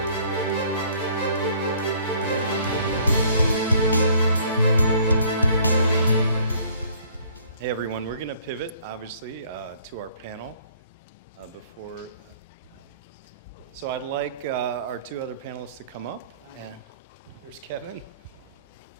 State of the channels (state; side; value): inverted; both; correlation -0.58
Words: everyone, we're going to pivot, obviously, to our panel before. So I'd like our two other panelists to come up. And there's Kevin